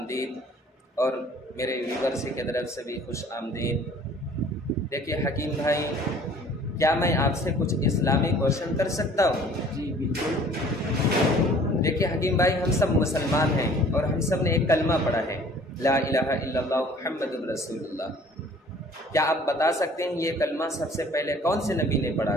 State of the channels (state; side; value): normal; both; correlation 0.52